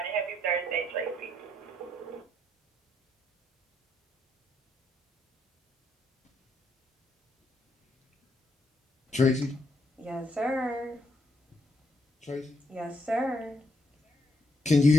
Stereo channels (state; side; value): normal; both; correlation 0.75